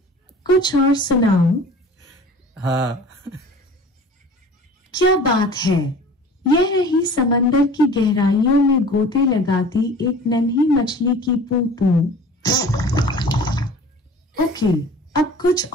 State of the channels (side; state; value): both; normal; correlation 0.43